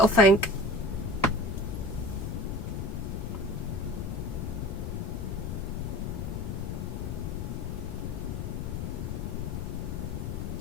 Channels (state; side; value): noise; left; rumble, 2 dB below the sound